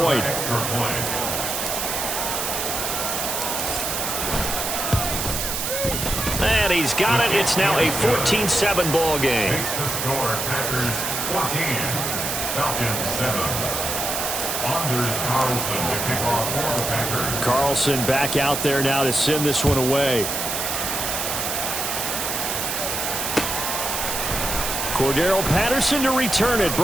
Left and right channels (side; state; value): right; noise; hiss, 2 dB below the sound